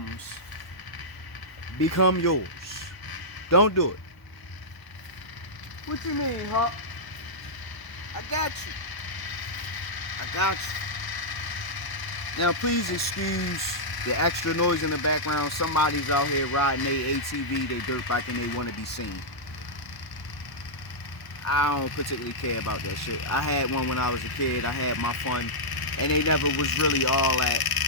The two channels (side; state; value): right; late; 1.0 ms